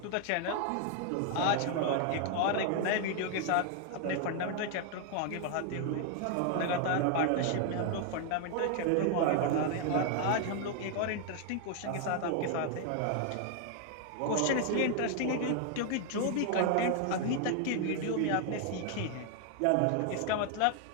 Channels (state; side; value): different; both; correlation 0.00